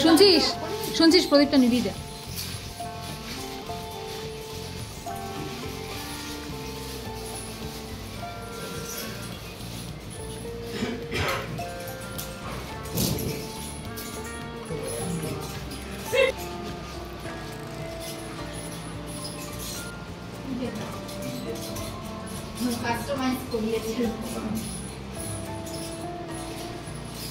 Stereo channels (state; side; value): identical; both; correlation 1.00